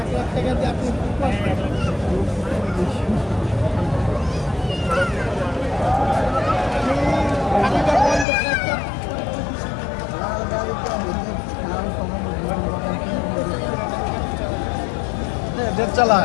লাখ টাকা দিয়ে আপনি देख चला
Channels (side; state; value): right; drops out; at 8.2 s